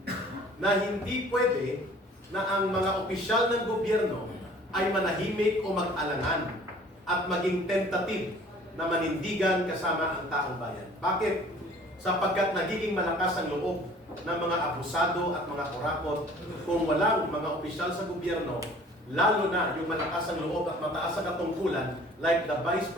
na hindi pwede na ang mga opisyal ng gobyerno ay manahimik o mag-alangan at maging tentative na manindigan kasama ang taong bayan. Bakit? Sapagkat nagiging malakas ang loob ng mga abusado at mga kurakot kung walang mga opisyal sa gobyerno, lalo na yung malakas ang loob at mataas ang katungkulan like the Vice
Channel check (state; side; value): normal; both; correlation 0.51